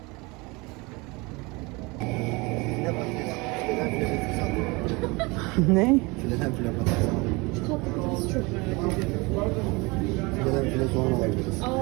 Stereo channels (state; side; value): quieter; left; 25.7 dB